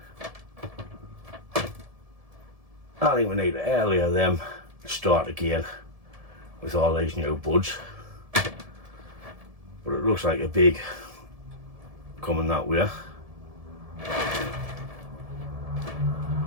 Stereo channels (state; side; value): late; left; 1.7 ms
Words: I think we need to earlier them start again with all these new buds. But it looks like a big coming that way.